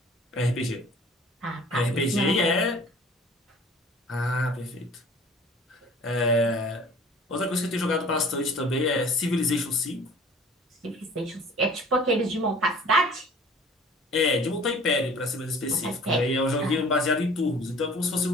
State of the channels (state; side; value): normal; both; correlation 0.48